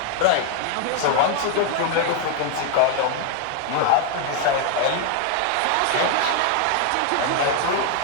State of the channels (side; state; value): both; different; correlation 0.01